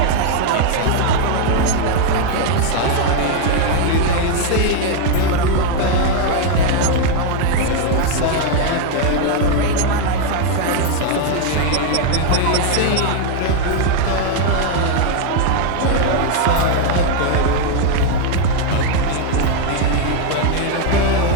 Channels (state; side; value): different; both; correlation 0.01